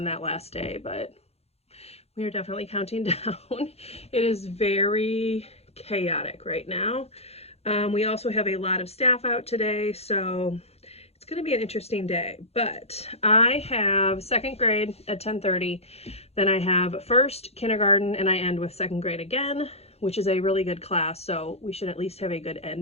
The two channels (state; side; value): late; right; 0.30 ms